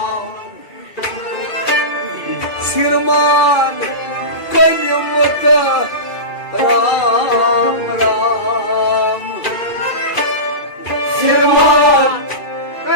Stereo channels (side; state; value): right; late; 2.4 ms